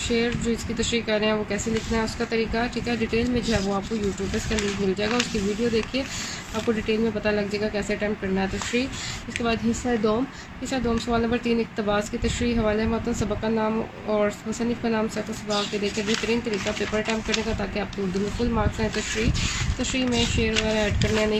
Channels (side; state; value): both; identical; correlation 1.00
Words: जो इसकी तशरीह कर रहे हैं वो कैसे लिखना है उसका तरीका, ठीक है। डिटेल में जो है वो आपको यूट्यूब पर इसका लिंक मिल जाएगा, उसकी वीडियो देखिए, आपको डिटेल में पता लग जाएगा कैसे अटैम्प्ट करना है तशरीह। इसके बाद हिस्सा दोम सवाल नंबर 3 इक़्तिबास की तशरीह, हवाले मतन, सबक का नाम और मुसन्निफ़ का नाम सफ़ सबाक के देकर बेहतरीन तरीका पेपर अटैम्प्ट करने का, ताकि आपको उर्दू में फुल मार्क्स हैं। तशरीह में शेर वगैरह ऐड करने या नहीं